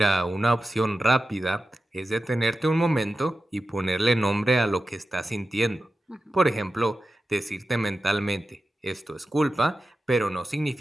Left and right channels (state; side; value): normal; both; correlation 0.93